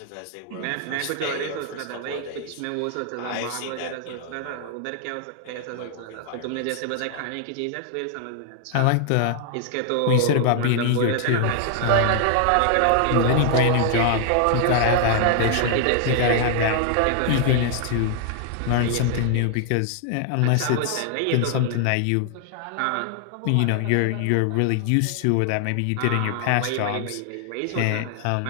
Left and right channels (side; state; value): both; different; correlation 0.00